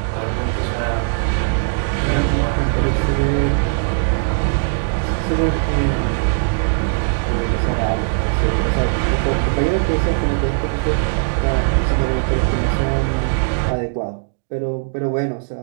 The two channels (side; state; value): left; silent; digital silence